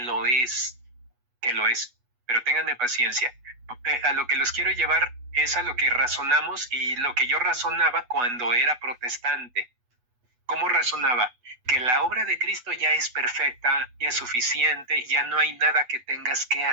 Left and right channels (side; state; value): left; late; 8.1 ms